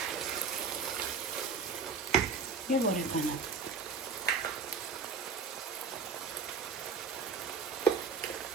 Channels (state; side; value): quieter; left; 5.0 dB